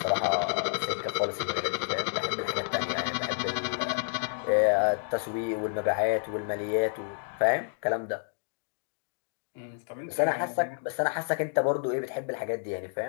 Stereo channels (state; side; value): silent; right; digital silence